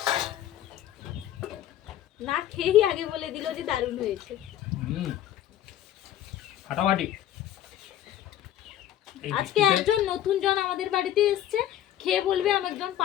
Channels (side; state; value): right; quieter; 12.0 dB